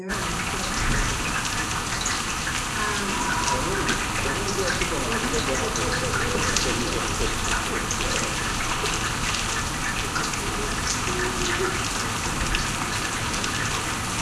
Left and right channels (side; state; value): both; identical; correlation 1.00